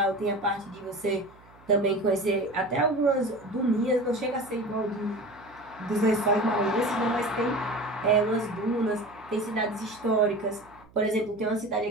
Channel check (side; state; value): right; noise; hum, 26 dB below the sound